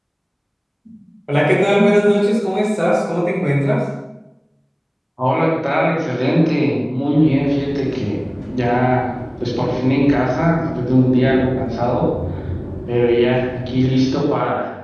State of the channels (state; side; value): identical; both; correlation 1.00